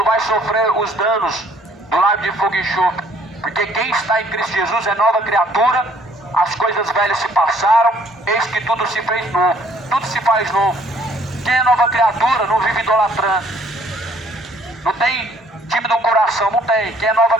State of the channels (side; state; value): both; normal; correlation 0.61